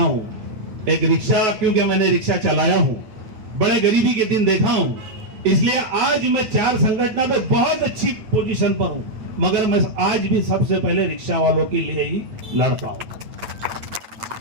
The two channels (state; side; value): late; left; 8.8 ms